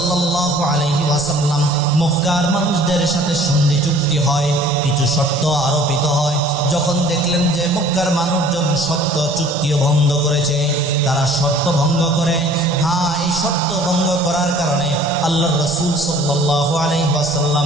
আলাইহি ওয়াসাল্লাম মক্কার মানুষদের সাথে সন্ধি চুক্তি হয়, কিছু শর্ত আরোপিত হয়। যখন দেখলেন যে মক্কার মানুষজন শর্ত চুক্তিও ভঙ্গ করেছে, তারা শর্ত ভঙ্গ করে, হ্যাঁ এই শর্ত ভঙ্গ করার কারণে আল্লাহর রাসূল সাল্লাল্লাহু আলাইহি ওয়াসাল্লাম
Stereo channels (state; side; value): normal; both; correlation 0.51